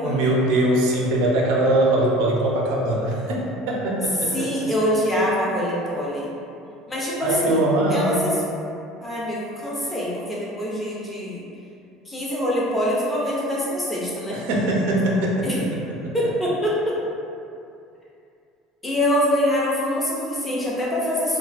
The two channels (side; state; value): both; normal; correlation 0.43